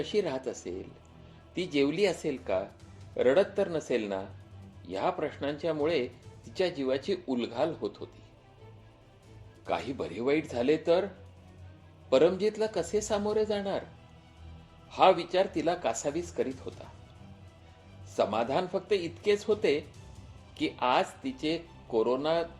राहत असेल? ती जेवली असेल का? रडत तर नसेल ना? ह्या प्रश्नांच्यामुळे तिच्या जीवाची उलघाल होत होती. काही बरे वाईट झाले तर परमजीतला कसे सामोरे जाणार, हा विचार तिला कासावीस करीत होता. समाधान फक्त इतकेच होते की आज तिचे कोरोना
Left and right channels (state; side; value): identical; both; correlation 1.00